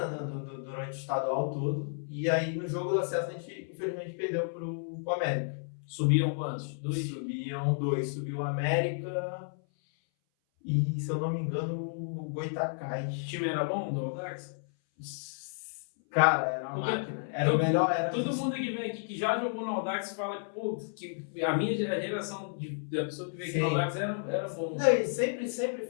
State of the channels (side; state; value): right; silent; 57 dB below the other